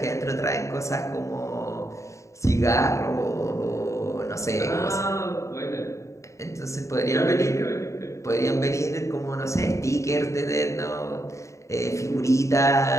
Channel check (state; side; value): late; right; 0.15 ms